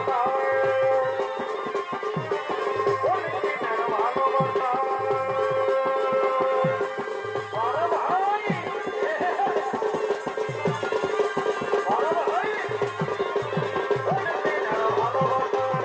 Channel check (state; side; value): identical; both; correlation 1.00